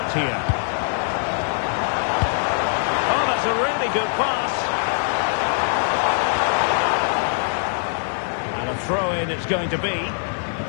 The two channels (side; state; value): right; silent; digital silence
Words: here. A really good pass. And a throw-in it's going to be. Plenty